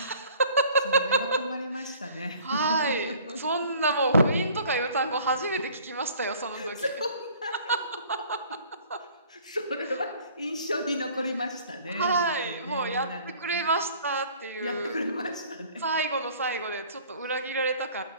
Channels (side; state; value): both; inverted; correlation -0.53